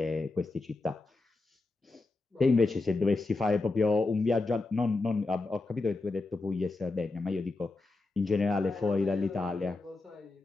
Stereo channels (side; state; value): right; quieter; 3.4 dB